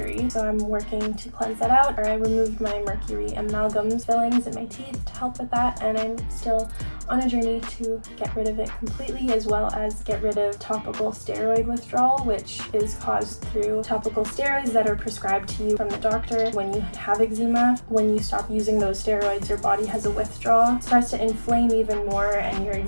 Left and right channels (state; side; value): inverted; both; correlation -1.00